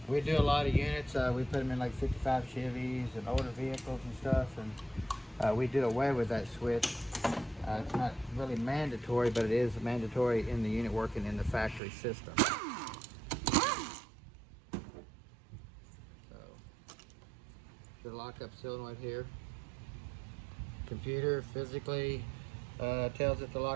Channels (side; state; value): left; drops out; at 11.8 s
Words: we do a lot of units. We put them in like 55 Chevys and older vehicles and stuff, and we do away with that switch. It's not really mandatory, but it is mandatory in the unit working in the factory system. So the lockup solenoid here. Computer physically tells it to